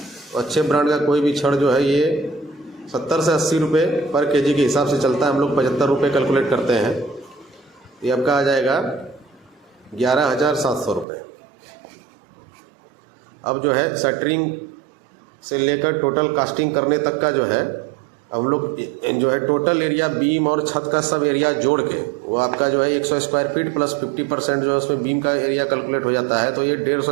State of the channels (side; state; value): left; drops out; at 11.1 s